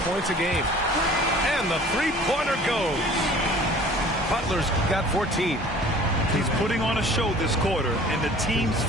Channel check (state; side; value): normal; both; correlation 0.48